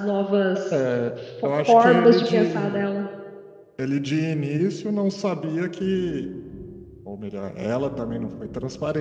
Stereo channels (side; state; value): both; identical; correlation 1.00